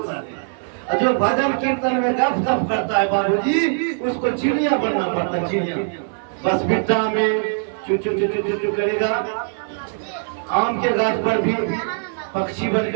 है, और जो भजन कीर्तन में गप करता है बाबूजी, उसको चिड़िया बनना पड़ता है, चिड़िया बस बिट्टा में चू चू चू चू चू करेगा, आम के गाछ पर भी पक्षी बन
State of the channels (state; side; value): silent; left; 58 dB below the other